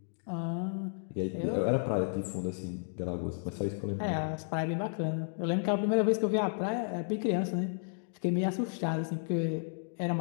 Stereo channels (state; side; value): silent; right; digital silence